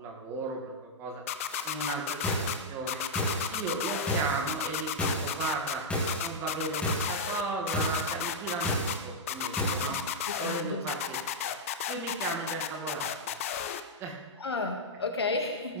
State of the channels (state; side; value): normal; both; correlation -0.05